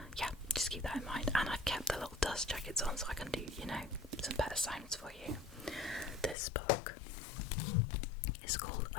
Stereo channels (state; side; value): drops out; right; at 6.4 s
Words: yeah, just keep that in mind. And I've kept the little dust jackets on so I can do, some better sounds for you. This book is called